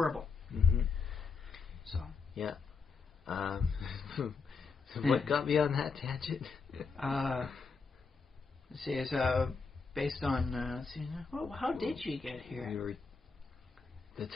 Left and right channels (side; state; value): right; quieter; 4.9 dB